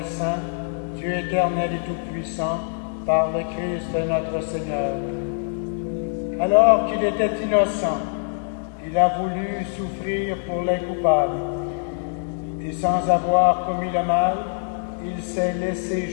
saint, Dieu éternel et tout-puissant, par le Christ notre Seigneur. Alors qu'il était innocent, il a voulu souffrir pour les coupables, et sans avoir commis le mal, il s'est laissé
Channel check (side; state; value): right; silent; 63 dB below the other